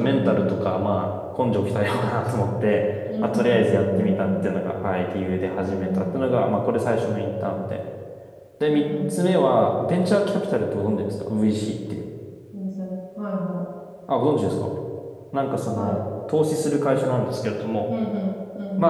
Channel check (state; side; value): identical; both; correlation 1.00